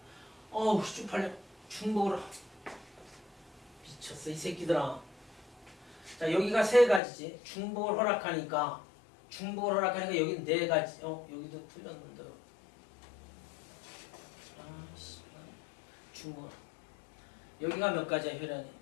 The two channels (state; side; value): drops out; right; at 7.0 s